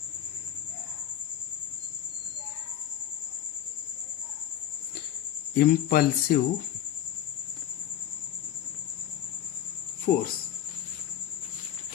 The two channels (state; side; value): quieter; right; 10.9 dB